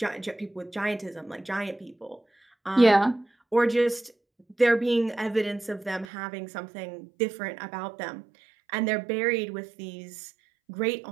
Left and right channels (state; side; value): drops out; left; at 6.1 s